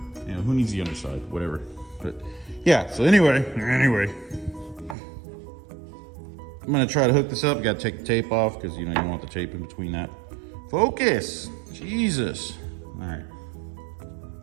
You know, who needs the underside? Whatever. But yeah, so anyway, I'm gonna try to hook this up. Gotta take the tape off, because you know, you don't want the tape in between that. Focus, Jesus. All right.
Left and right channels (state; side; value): drops out; left; at 5.0 s